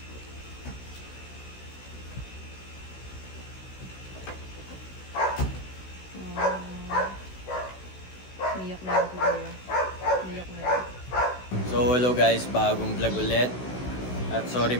Niyak na yung siguro. Niyak na yun. So hello guys, bagong vlog ulit. At sorry,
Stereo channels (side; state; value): right; late; 16 ms